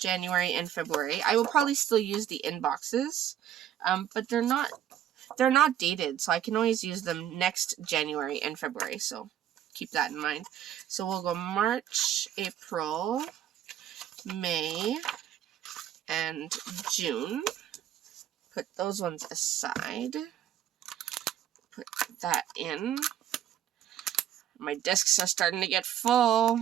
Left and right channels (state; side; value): quieter; left; 10.9 dB